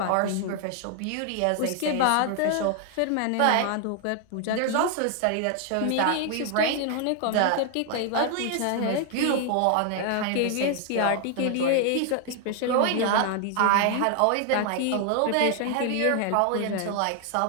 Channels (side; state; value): both; different; correlation 0.00